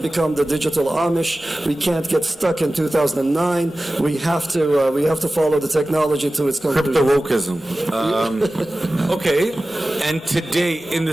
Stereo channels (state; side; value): normal; both; correlation 0.96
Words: the digital Amish. We can't get stuck in 2009. We have to follow the technology to its conclusion. Crypto-wokeism. Okay, and today in